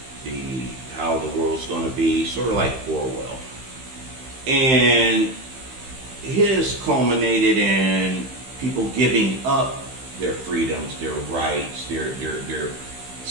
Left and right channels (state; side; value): late; left; 15 ms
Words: how the world's going to be, sort of like Orwell. And his culminated in people giving up their freedoms, their rights, their